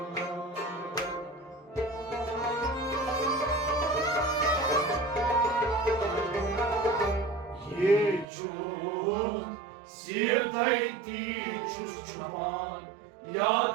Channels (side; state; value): left; drops out; at 8.2 s